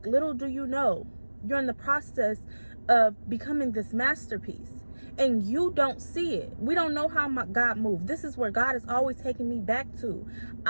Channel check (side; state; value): both; inverted; correlation -1.00